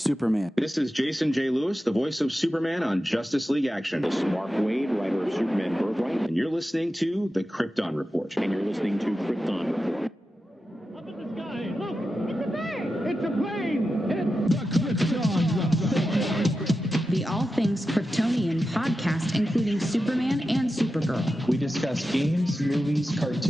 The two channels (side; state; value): both; normal; correlation 0.92